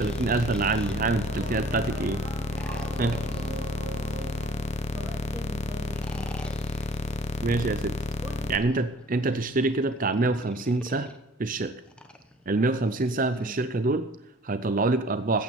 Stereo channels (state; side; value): normal; both; correlation 0.52